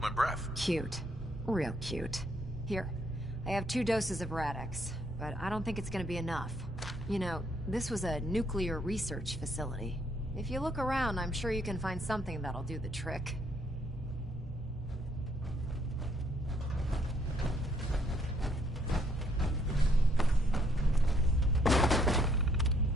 my breath. Cute. Real cute. Here, I have 2 doses of Rad-X, but I don't think it's gonna be enough. You know, this was a nuclear research facility. If you look around, I'm sure you can find something that'll do the trick.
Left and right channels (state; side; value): normal; both; correlation 0.69